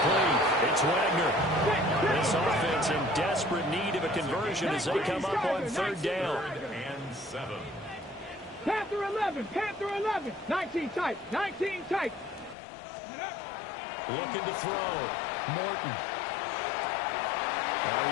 It's Wagner. This offense in desperate need of a conversion as they come up on 3rd down. 3rd and 7. Panther 11. Panther 11. 19 tight. 19 tight. Looking to throw. Morton.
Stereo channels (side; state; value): right; drops out; at 12.6 s